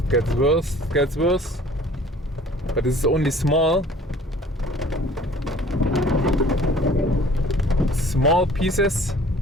gets worse. But this is only small pieces.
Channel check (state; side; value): normal; both; correlation 0.51